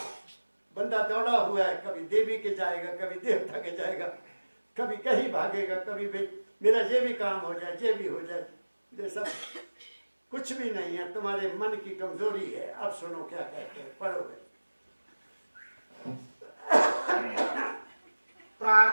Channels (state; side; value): inverted; both; correlation -1.00